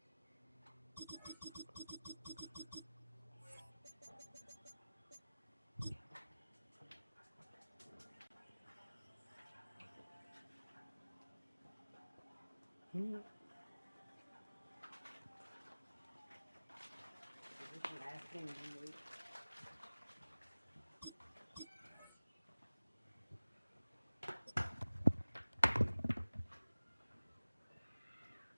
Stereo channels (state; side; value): inverted; both; correlation -0.99